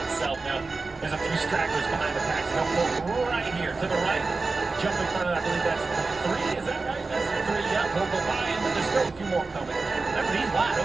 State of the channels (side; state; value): left; quieter; 3.9 dB